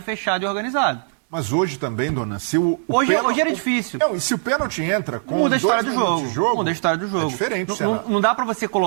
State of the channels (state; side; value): silent; left; digital silence